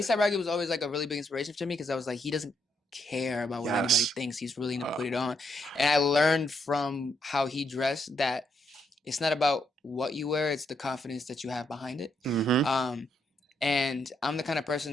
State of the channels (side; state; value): both; normal; correlation 0.77